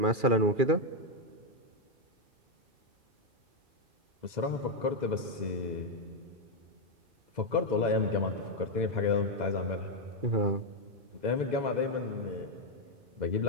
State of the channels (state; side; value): late; left; 2.1 ms